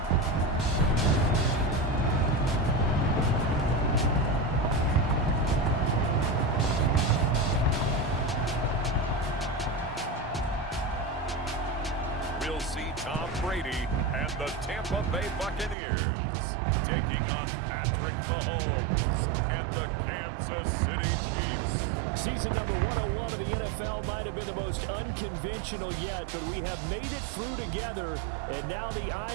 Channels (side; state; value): left; drops out; at 15.8 s